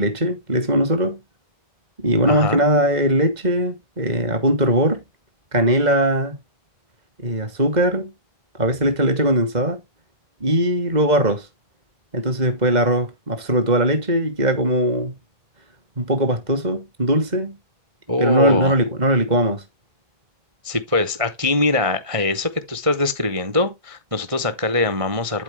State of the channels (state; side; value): late; left; 1.6 ms